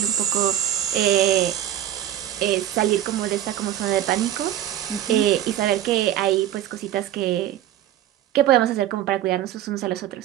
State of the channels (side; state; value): left; quieter; 12.0 dB